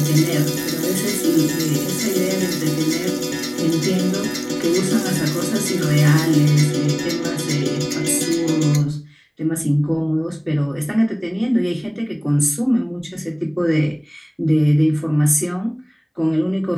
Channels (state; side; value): identical; both; correlation 1.00